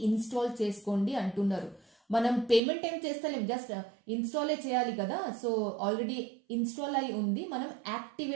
ఇన్స్టాల్ చేసుకోండి అంటున్నారు. మనం పేమెంట్ ఏం చేస్తలేం, జస్ట్ ఇన్స్టాలే చేయాలి కదా. సో ఆల్రెడీ ఇన్స్టాల్ అయి ఉంది, మనం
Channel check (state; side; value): drops out; left; at 2.6 s